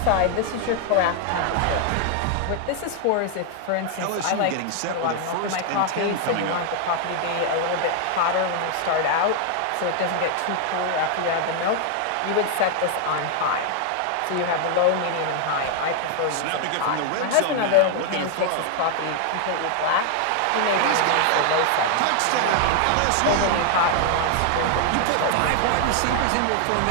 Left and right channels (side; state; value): both; different; correlation 0.00